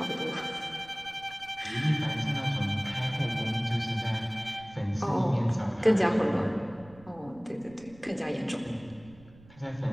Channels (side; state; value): right; noise; rumble, 23 dB below the sound